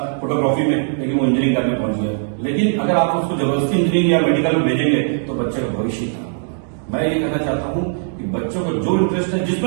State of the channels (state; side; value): silent; left; digital silence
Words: फोटोग्राफी में, लेकिन वो इंजीनियरिंग करने पहुंच गया। लेकिन अगर आप उसको जबरदस्ती इंजीनियरिंग या मेडिकल में भेजेंगे तो बच्चे का भविष्य खराब होगा। मैं ये कहना चाहता हूँ कि बच्चों को जो इंटरेस्ट है,